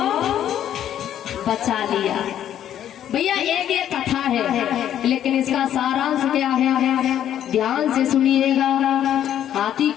बचा लिया। भैया एक ये कथा है, लेकिन इसका सारांश क्या है, ध्यान से सुनिएगा। हाथी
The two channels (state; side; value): quieter; right; 10.7 dB